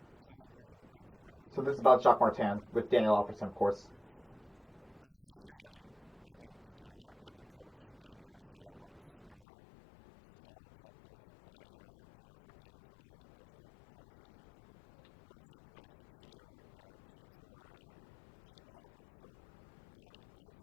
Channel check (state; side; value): drops out; right; at 9.4 s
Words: learning to play a 200-foot game from Jacques Martin as well throughout the season? Yeah, I mean, I think every coach in the NHL wants all the top players to play a 200-foot game as well. I think there's not one coach in the league who wants their players to cheat or cheat for cheap offense. So I